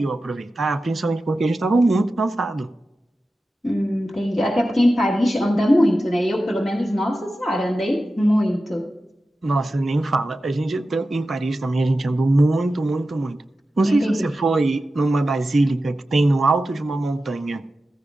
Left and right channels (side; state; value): both; normal; correlation 0.93